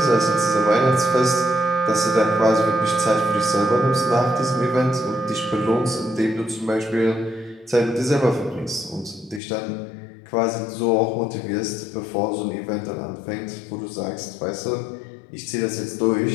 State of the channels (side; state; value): right; drops out; at 9.4 s